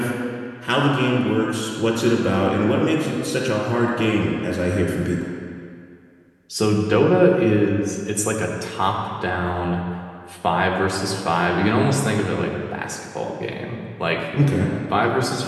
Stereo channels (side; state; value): both; identical; correlation 1.00